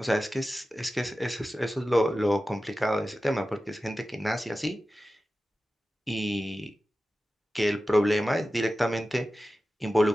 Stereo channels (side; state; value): both; normal; correlation 0.94